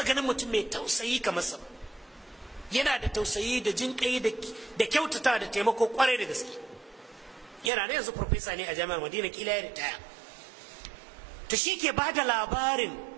ganin mutum mai tausayi kamar sa, yana da tausayi da jinƙai da kyautata da taimako kwarai da gaske. Yana da yanzu professor ne a jami'ar Madina, kila ya ritaya. To shi ke ba da labarin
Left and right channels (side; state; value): left; drops out; at 7.7 s